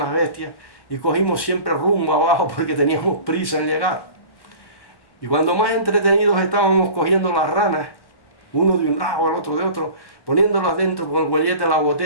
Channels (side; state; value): right; late; 1.1 ms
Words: bestias, y cogimos siempre rumbo abajo porque teníamos prisa en llegar. Y cuando más entretenidos estábamos cogiendo las ranas, uno de un lado, el otro de otro, poniéndolas dentro con el huellete de la